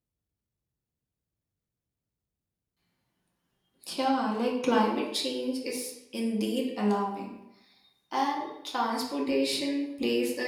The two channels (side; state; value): both; identical; correlation 1.00